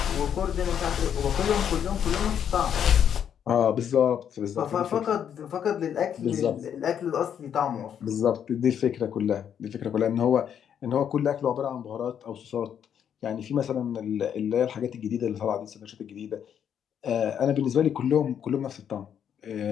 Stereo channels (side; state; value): right; quieter; 8.8 dB